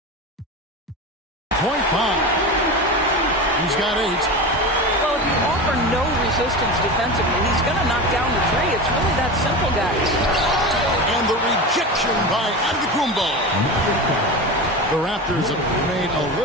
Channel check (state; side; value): normal; both; correlation 0.26